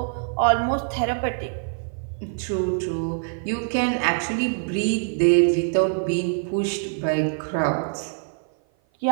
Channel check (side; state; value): left; silent; 56 dB below the other